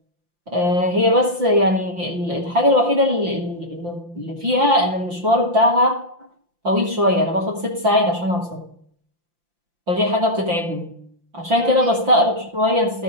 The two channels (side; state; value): left; late; 5.8 ms